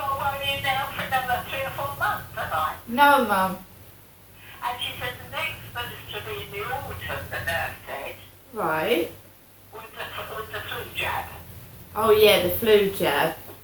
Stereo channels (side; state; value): both; identical; correlation 1.00